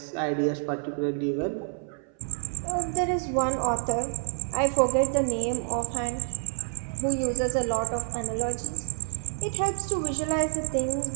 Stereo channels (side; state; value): left; silent; 57 dB below the other